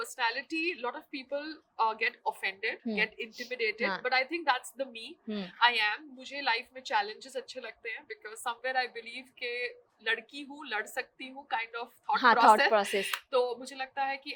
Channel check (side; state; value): both; identical; correlation 1.00